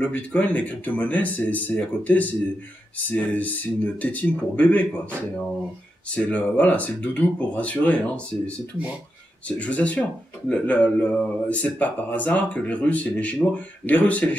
Bitcoin, les crypto-monnaies, c'est à côté, c'est une tétine pour bébé, quoi. C'est le doudou pour rassurer, hein. C'est tout, hein. Je vous assure. C'est pas par hasard que les Russes et les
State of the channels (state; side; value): normal; both; correlation 0.86